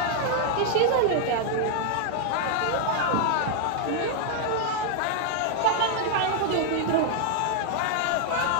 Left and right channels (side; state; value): both; different; correlation 0.00